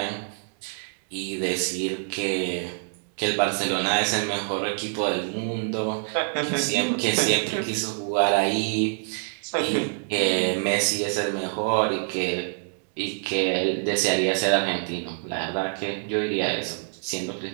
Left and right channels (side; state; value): left; silent; 61 dB below the other